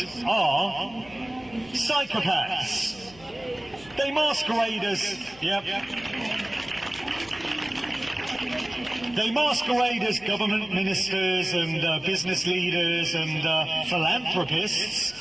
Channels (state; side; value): noise; left; hum, 23 dB below the sound